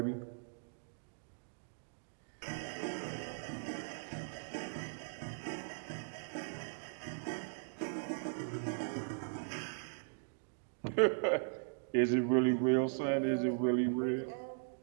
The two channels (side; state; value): left; silent; digital silence